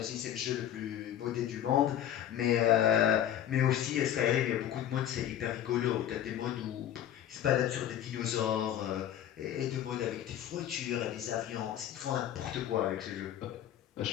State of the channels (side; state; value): right; quieter; 10.9 dB